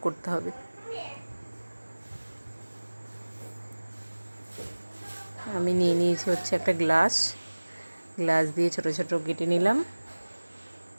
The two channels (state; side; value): inverted; both; correlation -1.00